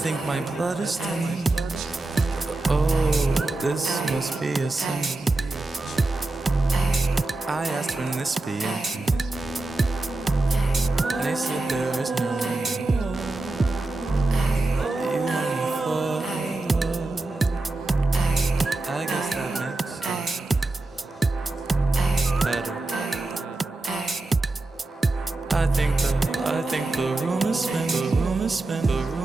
my blood is thinning. Oh, this must be a sign. I asked when this be ending. They said there is no end. You want me for I guess that makes better. I think the room is spin, the room is spin, the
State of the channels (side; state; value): left; quieter; 3.1 dB